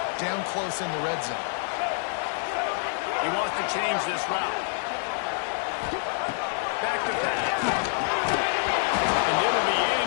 down close in the red zone. He wants to change this route. Back to pass. And it'll be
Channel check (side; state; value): right; silent; 60 dB below the other